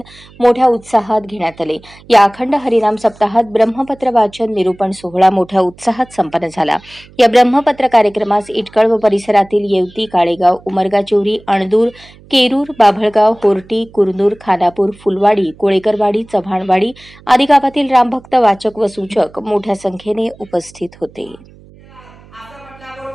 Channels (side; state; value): right; noise; hum, 24 dB below the sound